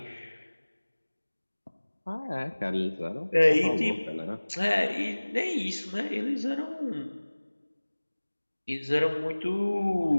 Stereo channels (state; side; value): inverted; both; correlation -1.00